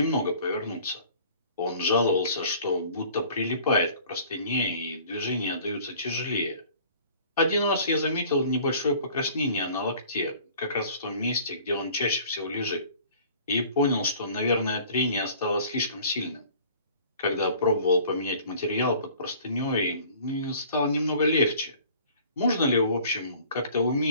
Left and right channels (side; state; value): both; inverted; correlation -0.50